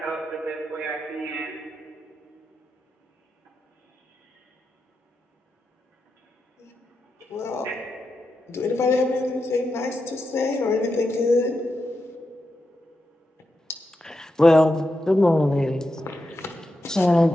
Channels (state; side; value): normal; both; correlation 0.87